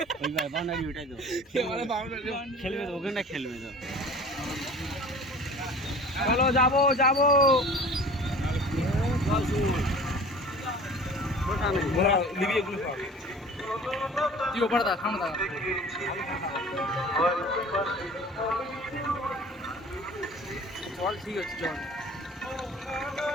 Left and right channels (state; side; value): normal; both; correlation 0.43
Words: ওইবার বাউন্ডারি ওটাই তো খেলবে তো, ওখানটা খেলবে তো। চলো যাবো যাবো। তুই ওপরে দা সামনে দা চল ঠিক আছে চল